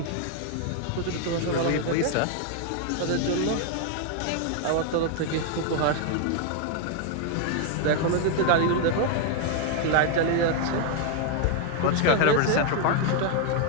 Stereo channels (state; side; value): different; both; correlation 0.00